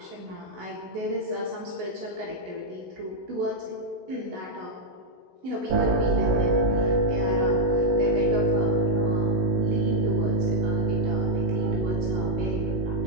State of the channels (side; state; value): left; late; 16 ms